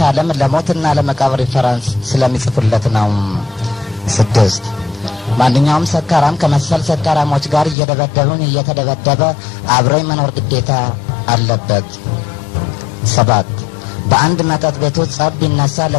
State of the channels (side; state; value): right; drops out; at 7.8 s